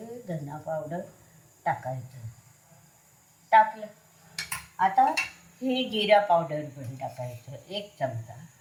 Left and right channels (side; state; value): both; identical; correlation 1.00